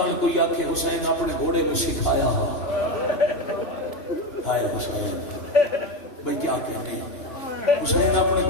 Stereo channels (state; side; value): late; right; 2.9 ms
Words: کوئی آکھے حسین اپنے گھوڑے میں سکھایا ہائے حسین بھئی کیا کہنے حسین اپنے